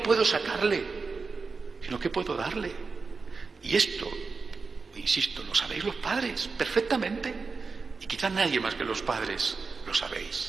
sacarle? Sino, ¿qué puedo darle? Y esto, insisto, lo sabéis los padres perfectamente. Y quizás nadie más que los padres lo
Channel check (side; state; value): left; quieter; 4.5 dB